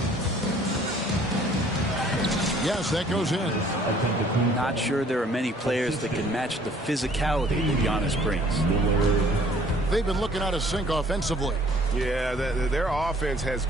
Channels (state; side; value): normal; both; correlation 0.56